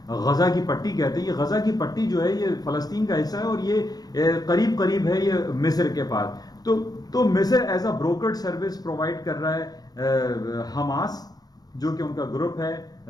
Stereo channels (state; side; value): late; right; 0.19 ms